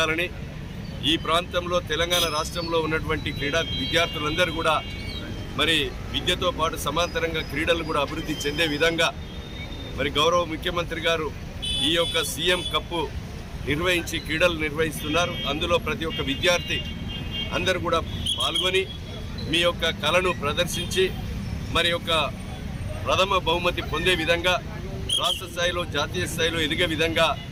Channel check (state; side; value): identical; both; correlation 1.00